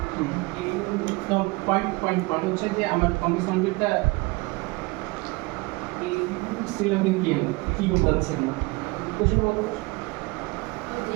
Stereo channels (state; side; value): quieter; left; 24.9 dB